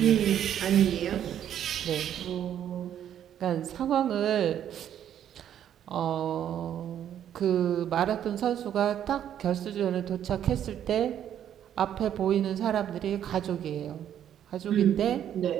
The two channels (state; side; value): quieter; left; 10.1 dB